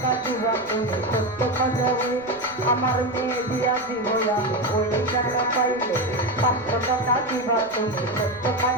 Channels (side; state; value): right; noise; rumble, 25 dB below the sound